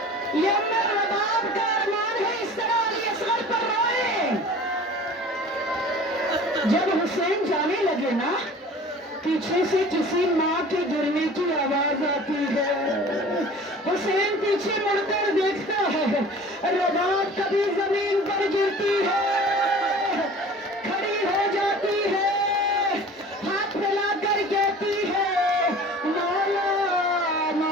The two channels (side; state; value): both; normal; correlation 0.43